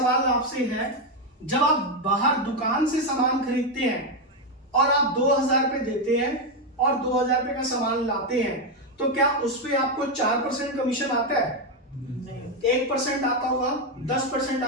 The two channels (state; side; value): normal; both; correlation 0.05